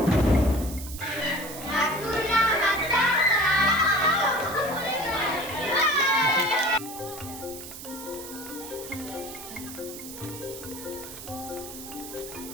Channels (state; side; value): noise; right; hiss, 12 dB below the sound